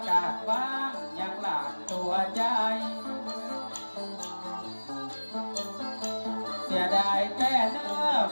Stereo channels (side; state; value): both; inverted; correlation -1.00